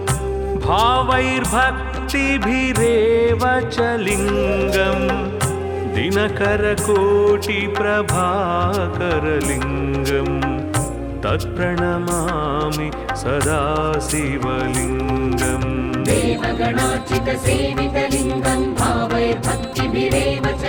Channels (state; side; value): identical; both; correlation 1.00